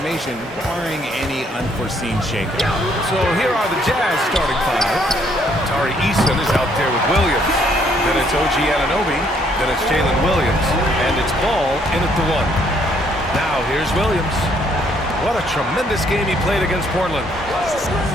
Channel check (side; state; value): both; normal; correlation 0.67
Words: barring any unforeseen shakeup. So here are the Jazz starting five. Tari Eason is out there with Williams. Then it's OG Anunoby. Then it's Jalen Williams. And it's Ball in at the one. Now here's Williams. What a tremendous game he played against Portland.